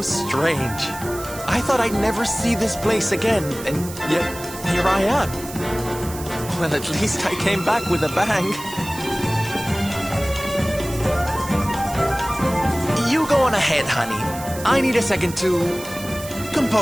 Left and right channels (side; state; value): right; noise; hiss, 13 dB below the sound